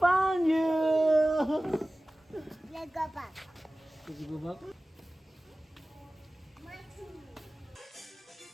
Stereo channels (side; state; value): both; normal; correlation 0.97